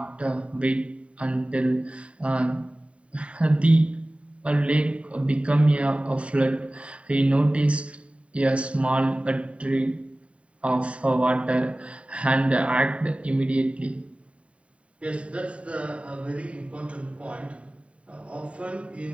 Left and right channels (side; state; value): left; late; 0.063 ms